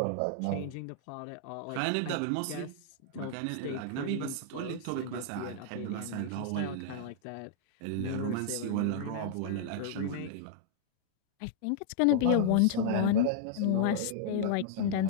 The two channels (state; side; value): different; both; correlation -0.01